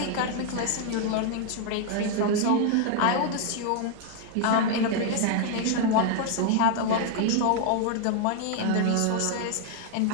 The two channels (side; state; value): both; different; correlation 0.00